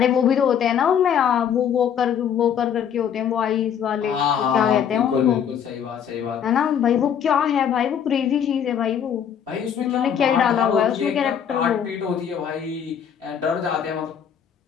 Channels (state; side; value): quieter; right; 8.4 dB